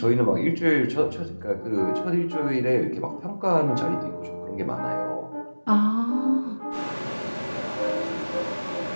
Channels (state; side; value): inverted; both; correlation -1.00